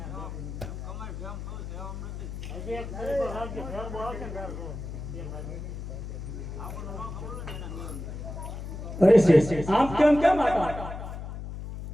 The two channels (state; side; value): noise; left; hum, 8 dB below the sound